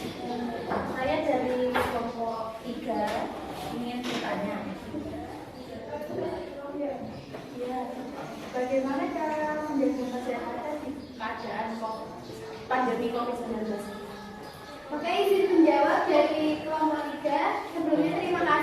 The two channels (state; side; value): identical; both; correlation 1.00